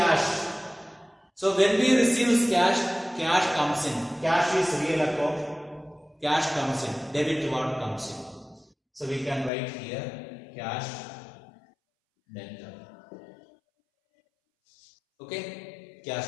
So when we receive cash, cash comes in. Cash is real account. Cash comes in. Debit what comes in. So we can write here cash debtor. Okay, cash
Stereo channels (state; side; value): drops out; right; at 9.5 s